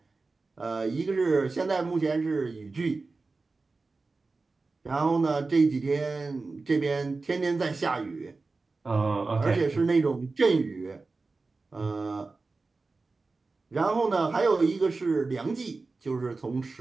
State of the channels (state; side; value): quieter; left; 3.8 dB